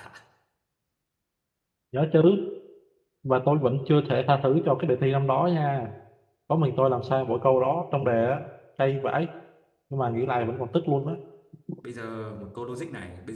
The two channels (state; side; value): identical; both; correlation 1.00